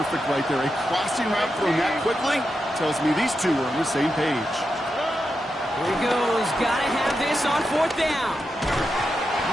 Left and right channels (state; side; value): normal; both; correlation 0.87